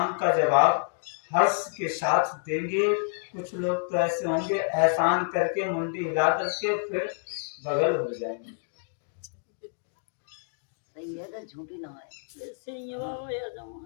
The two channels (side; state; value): right; silent; digital silence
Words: का जवाब हर्ष के साथ देंगे। कुछ लोग तो ऐसे होंगे एहसान करके मुंडी हिला करके फिर बगल हो जाएंगे। सही है तो झूठी ना है।